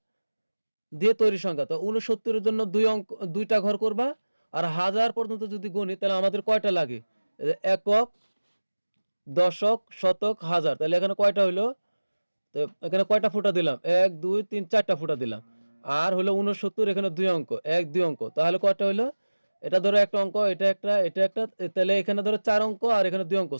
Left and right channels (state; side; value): inverted; both; correlation -1.00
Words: দিয়ে তৈরি সংখ্যা, তো 69-এর জন্য 2টা ঘর করবা, আর 1000 পর্যন্ত যদি গণি তাহলে আমাদের কয়টা লাগে? একক, দশক, শতক, হাজার, তাহলে এখানে কয়টা হইলো? তো এখানে কয়টা ফুটা দিলাম? 1 2 3 4টা ফুটা দিলাম। আর হলো 69, এখানে 2 অঙ্ক, 1 2 অঙ্ক, তাহলে কয়টা হইলো? এটা ধরো একটা অঙ্ক, এটা একটা, এটা একটা, তাহলে এখানে ধরো 4 অঙ্ক, আর এখানে 2 অঙ্ক,